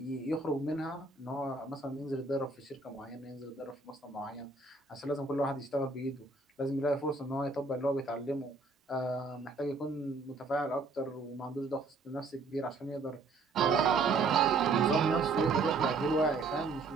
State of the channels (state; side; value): quieter; left; 3.7 dB